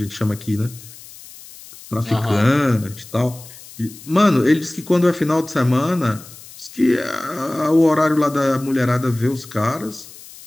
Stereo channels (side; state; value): left; noise; hiss, 18 dB below the sound